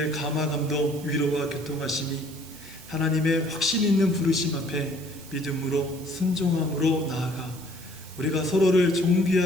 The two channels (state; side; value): noise; right; hiss, 18 dB below the sound